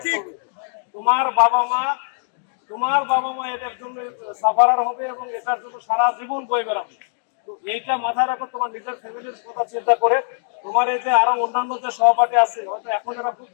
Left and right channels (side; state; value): right; silent; digital silence